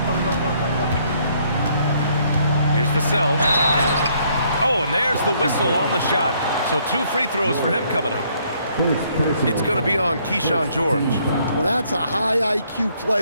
Here's Vassell. Oh, and there's the whistle on the shot. So 2 free throws for him coming up. It's going to be on Keyshawn George. Well, that's a high IQ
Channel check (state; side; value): inverted; both; correlation -0.67